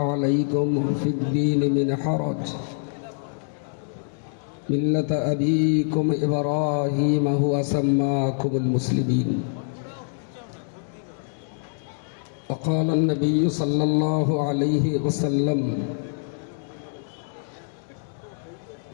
في الدين من حرج ملة أبيكم إبراهيم هو سماكم المسلمين وقال النبي صلى الله عليه وسلم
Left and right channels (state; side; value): silent; right; 62 dB below the other